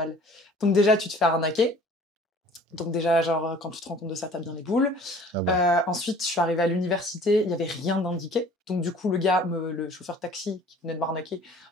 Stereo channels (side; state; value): both; normal; correlation 0.50